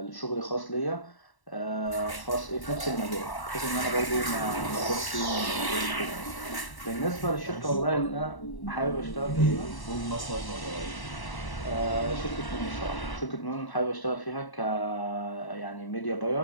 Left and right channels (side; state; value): right; late; 1.1 ms